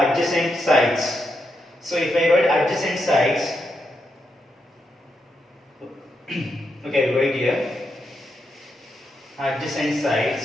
adjacent sides. So if I write adjacent sides, okay, right here, adjacent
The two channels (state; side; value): normal; both; correlation 0.82